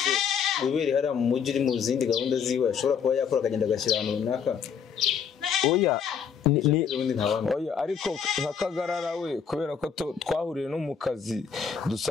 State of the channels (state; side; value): quieter; right; 7.1 dB